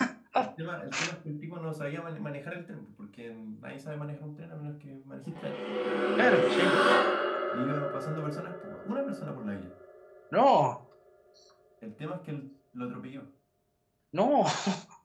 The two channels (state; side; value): identical; both; correlation 1.00